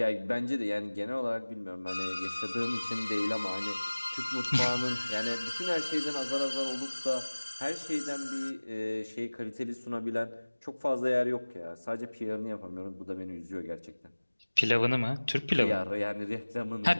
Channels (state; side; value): inverted; both; correlation -1.00